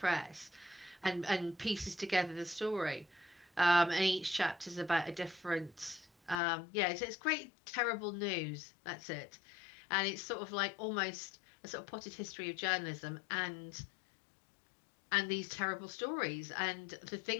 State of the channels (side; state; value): right; drops out; at 6.4 s